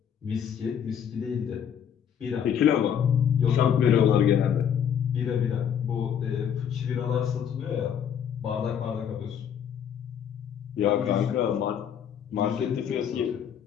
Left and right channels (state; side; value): quieter; right; 8.4 dB